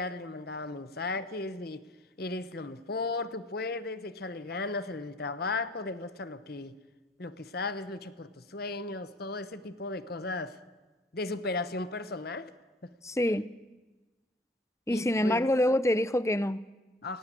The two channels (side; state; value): both; normal; correlation 0.53